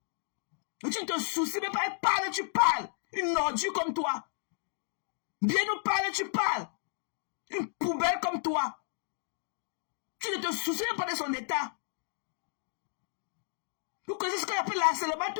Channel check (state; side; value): silent; right; digital silence